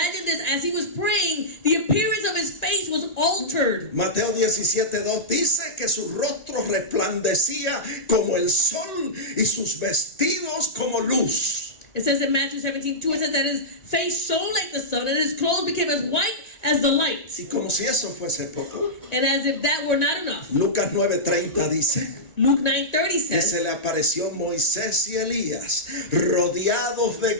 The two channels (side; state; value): right; late; 1.9 ms